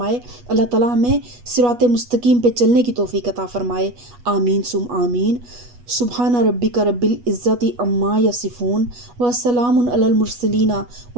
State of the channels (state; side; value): late; left; 8.2 ms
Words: اللہ تعالیٰ ہمیں صراط مستقیم پہ چلنے کی توفیق عطا فرمائے۔ آمین ثم آمین۔ سبحان ربک رب العزت عما یصفون وسلام علی المرسلین